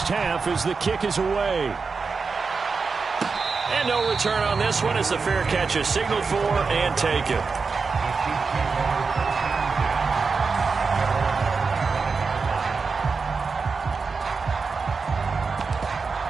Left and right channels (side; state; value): left; quieter; 4.8 dB